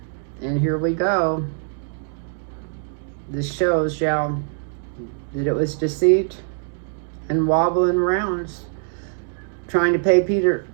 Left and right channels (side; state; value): left; silent; 64 dB below the other